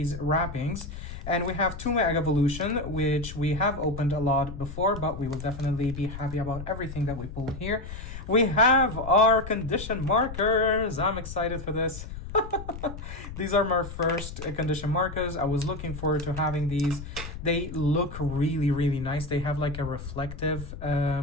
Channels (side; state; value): left; noise; rumble, 10 dB below the sound